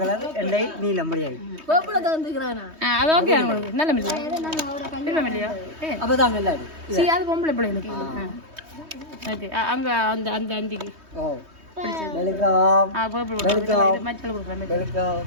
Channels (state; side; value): late; left; 3.2 ms